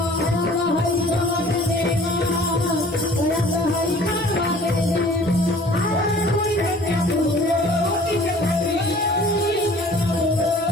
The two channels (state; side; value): normal; both; correlation 0.50